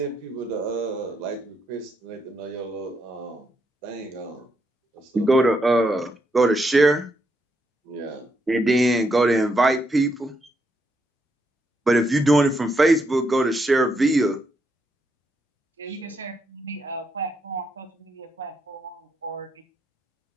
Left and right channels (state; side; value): normal; both; correlation 0.79